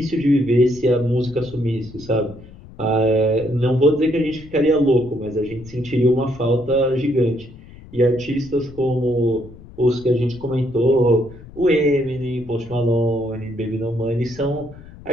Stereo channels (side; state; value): left; noise; rumble, 19 dB below the sound